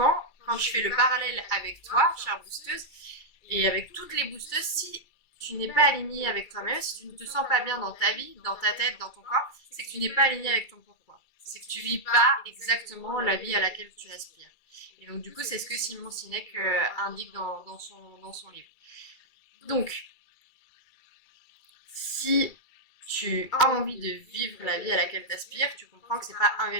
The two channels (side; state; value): right; late; 2.3 ms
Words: quand je fais le parallèle avec toi, chère boosteuse, et avec toutes les boosteuses, si tu n'es pas aligné avec toi-même, si tu ne te sens pas bien dans ta vie, dans ta tête, dans ton corps, c'est que tu n'es pas aligné avec ton pourquoi. C'est que tu vis pas exactement la vie à laquelle tu aspires. Et donc, du coup, c'est ce que Simon Sinek indique dans son livre. Donc, si tu as envie de vivre la vie à laquelle tu aspires, tu comprends que c'est pas un